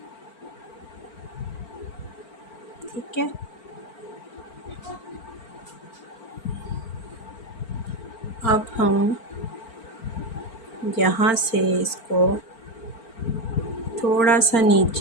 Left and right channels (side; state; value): right; late; 4.4 ms